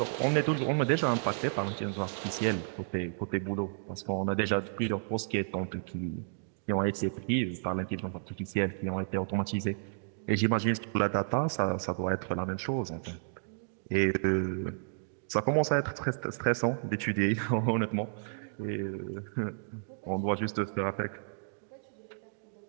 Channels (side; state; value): left; silent; digital silence